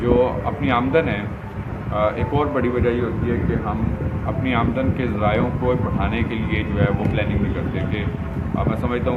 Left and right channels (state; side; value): identical; both; correlation 1.00